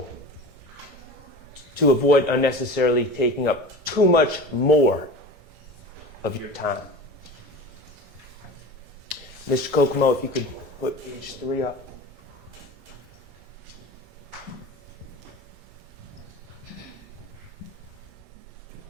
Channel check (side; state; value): both; normal; correlation 0.34